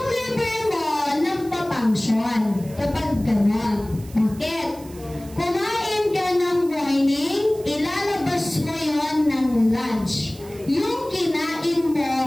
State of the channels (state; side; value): noise; right; hiss, 21 dB below the sound